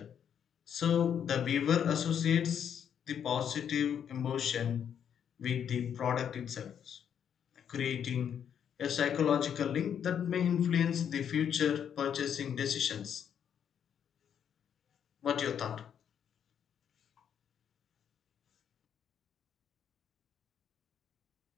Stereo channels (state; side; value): quieter; right; 8.5 dB